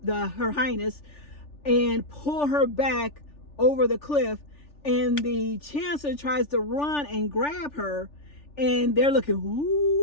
Highness and pull her back over the cliff. And the chancellor tries to run and grab her, and they're looking,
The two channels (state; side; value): late; right; 3.4 ms